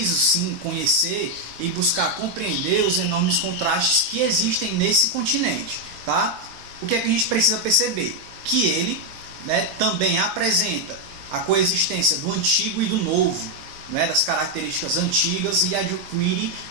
sim conhecer e buscar compreender os enormes contrastes que existem nesse continente. Tá? O que é que a gente precisa perceber? Que ele, né, também apresenta a coexistência do antigo e do novo, né, das características antigas, e adquire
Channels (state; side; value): late; left; 23 ms